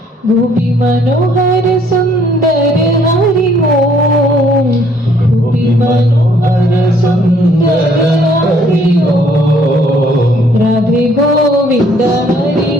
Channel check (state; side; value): normal; both; correlation 0.62